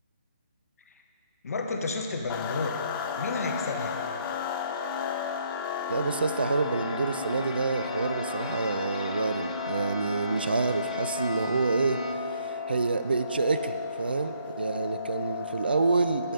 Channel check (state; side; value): inverted; both; correlation -0.68